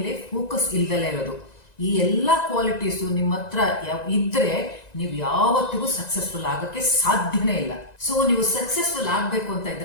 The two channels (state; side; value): late; right; 1.9 ms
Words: ಫೋಕಸ್ ಇಲ್ದಲೇ ಇರೋದು. ಈ ಎಲ್ಲಾ ಕ್ವಾಲಿಟೀಸ್ ನಿಮ್ಮ ಹತ್ರ ಇದ್ರೆ ನೀವು ಯಾವತ್ತಿಗೂ ಸಕ್ಸಸ್ಫುಲ್ ಆಗಕ್ಕೆ ಸಾಧ್ಯನೇ ಇಲ್ಲ. ಸೊ ನೀವು ಸಕ್ಸಸ್ಫುಲ್ ಆಗ್ಬೇಕು ಅಂತ